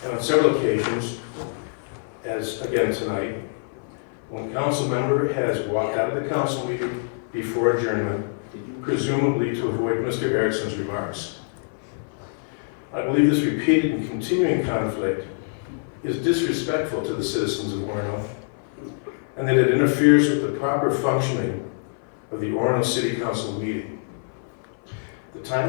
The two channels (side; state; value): right; silent; 57 dB below the other